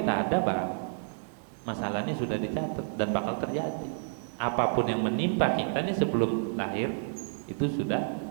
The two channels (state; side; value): silent; left; digital silence